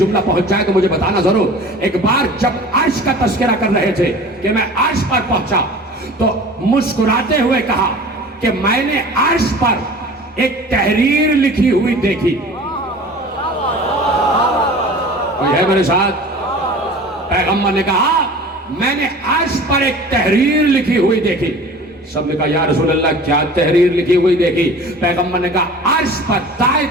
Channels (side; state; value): both; normal; correlation 0.41